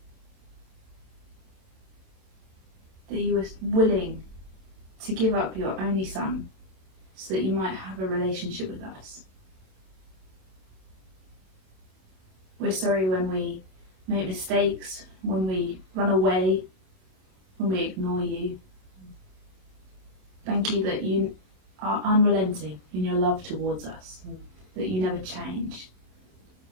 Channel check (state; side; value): late; left; 27 ms